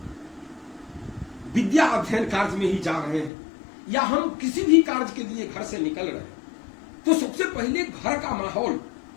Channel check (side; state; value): right; drops out; at 3.3 s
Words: विद्या अध्ययन कार्य में ही जा रहे हैं या हम किसी भी कार्य के लिए घर से निकल रहे हैं, तो सबसे पहले घर का माहौल,